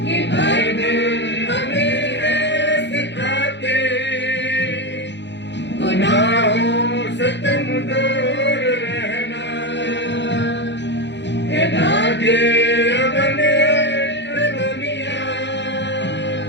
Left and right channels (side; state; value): right; late; 0.52 ms